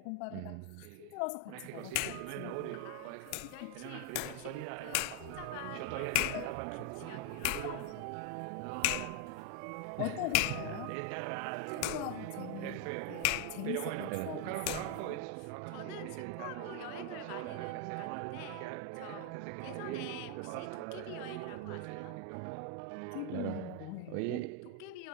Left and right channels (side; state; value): both; different; correlation 0.01